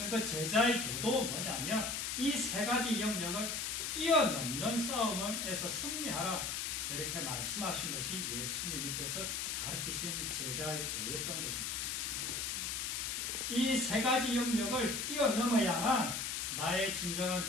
그 제자의 도도 뭐냐면 이 세 가지 영역을 뛰어넘는 싸움에서 승리하라, 이렇게 말씀하신 것이 예수님께서 가르치신 제자의 도였던 것입니다. 이 세 가지 영역을 뛰어넘어야만 나의 진정한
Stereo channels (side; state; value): left; noise; hiss, 1 dB below the sound